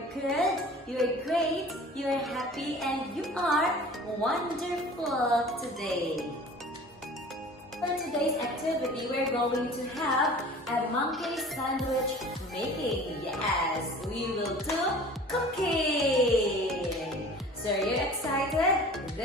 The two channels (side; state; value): both; normal; correlation 0.44